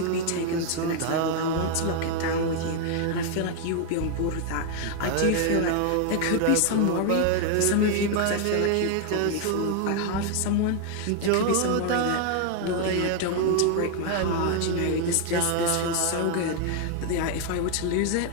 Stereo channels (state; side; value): different; both; correlation 0.00